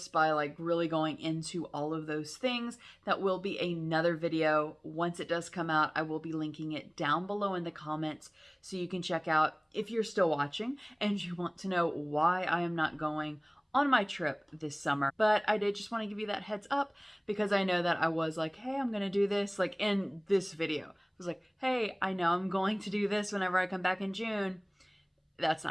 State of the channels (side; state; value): both; identical; correlation 1.00